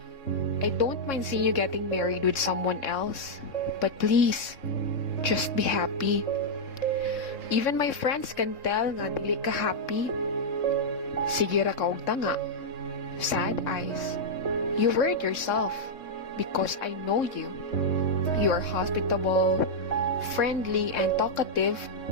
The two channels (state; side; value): late; right; 3.6 ms